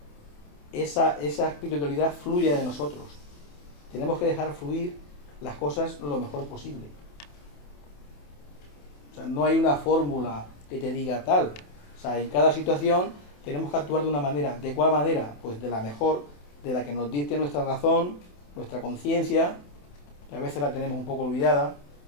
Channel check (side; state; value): right; late; 28 ms